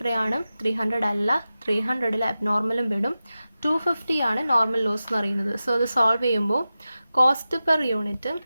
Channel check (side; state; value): both; inverted; correlation -0.94